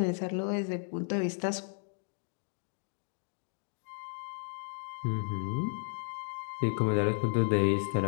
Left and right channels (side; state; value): right; silent; 55 dB below the other